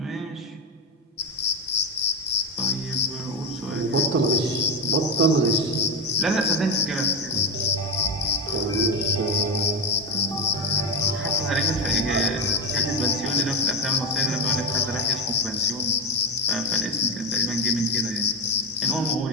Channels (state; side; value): normal; both; correlation 0.15